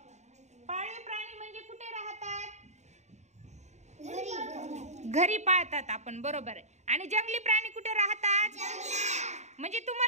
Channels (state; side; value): late; left; 0.33 ms